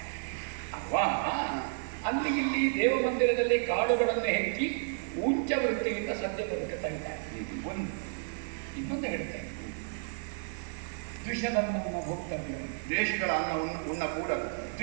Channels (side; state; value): left; silent; 57 dB below the other